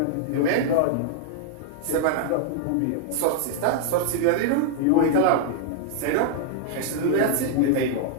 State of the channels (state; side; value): different; both; correlation 0.00